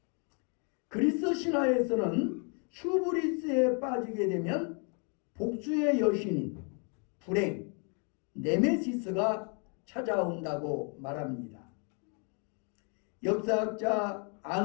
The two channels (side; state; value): right; quieter; 38.5 dB